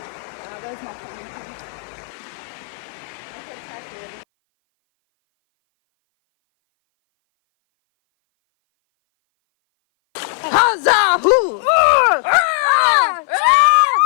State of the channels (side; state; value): right; silent; 58 dB below the other